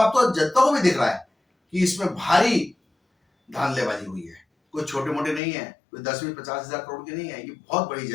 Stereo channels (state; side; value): drops out; right; at 5.4 s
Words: तो जनता को भी दिख रहा है कि इसमें भारी धांधलेबाजी हुई है। कोई छोटे मोटे नहीं है, कोई 10-20-50 हजार करोड़ की नहीं है, ये बहुत बढ़ी